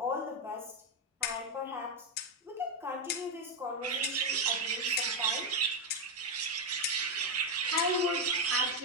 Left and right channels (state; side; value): normal; both; correlation 0.05